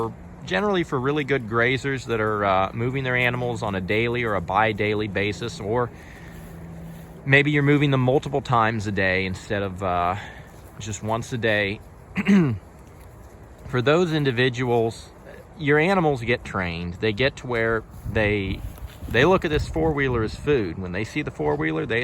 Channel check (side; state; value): both; identical; correlation 1.00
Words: generally for really good grazers that are moving their animals on a daily or a bi-daily basis, or maybe you're moving them multiple times a day instead of just once a day. For those individuals, your animals get trained. They get to where they look at this four-wheeler as food. When they see the four-wheeler, they